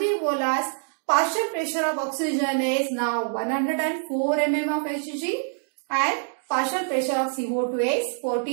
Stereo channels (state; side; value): silent; left; digital silence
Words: partial pressure of oxygen is now 104 mm of Hg and partial pressure of CO2 is